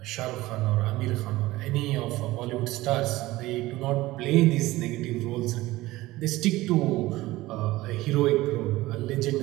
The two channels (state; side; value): quieter; left; 18.2 dB